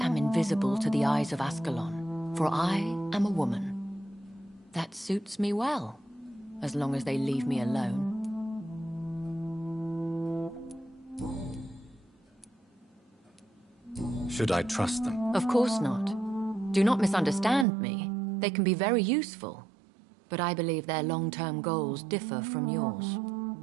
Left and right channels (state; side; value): drops out; left; at 17.7 s